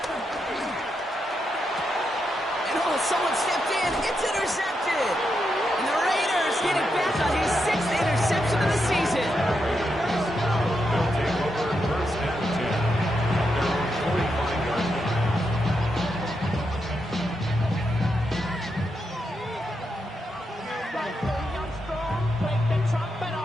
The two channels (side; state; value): both; normal; correlation 0.84